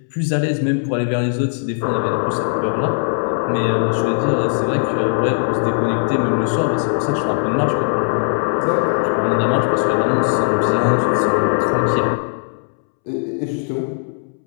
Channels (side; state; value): right; silent; 67 dB below the other